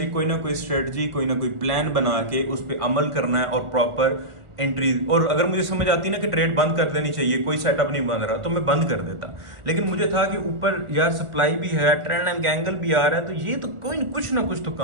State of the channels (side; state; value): left; late; 1.4 ms